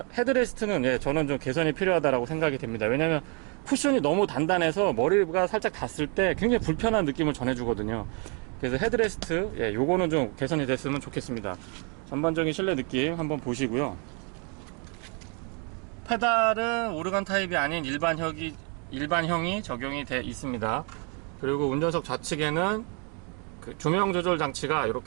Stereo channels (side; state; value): left; quieter; 36.4 dB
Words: 헤드레스트는 저는 좀 개선이 필요하다고 생각이 됩니다. 왜냐면 쿠션이 너무 단단해서 머리가 살짝 닿았을 때 굉장히 불편한 느낌을 전해주거든요. 그래서 헤드레스트 요거는 좀 개선이 됐으면 좋겠습니다. 전반적인 실내 느낌 한번 보시고요. 페달은 오르간 타입이 아닌 일반형이 적용이 되어 있습니다. 그리고 운전석 좌측에는 조명 조절 장치가